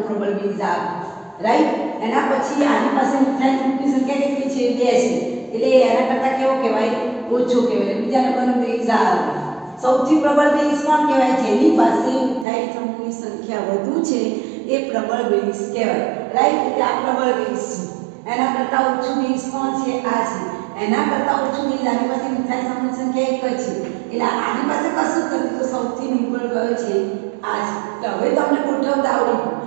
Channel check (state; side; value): drops out; left; at 12.5 s